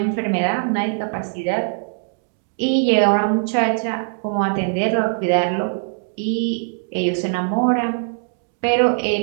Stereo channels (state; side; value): silent; left; digital silence